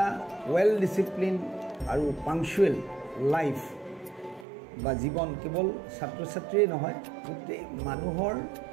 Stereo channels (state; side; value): drops out; left; at 4.5 s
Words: ৱেল ডিচিপ্লিন আৰু পাংচুৱেল লাইফ বা জীৱন কেৱল ছাত্ৰ ছাত্ৰীয়ে নহয়, গোটেই মানুহৰ